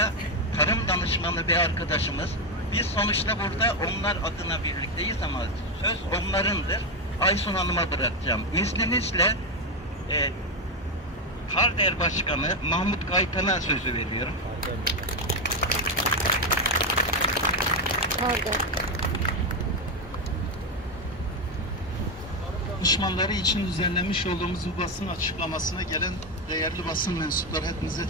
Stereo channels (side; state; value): both; normal; correlation 0.08